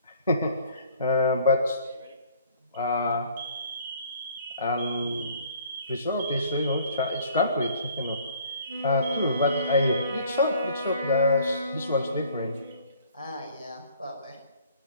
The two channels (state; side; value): inverted; both; correlation -0.56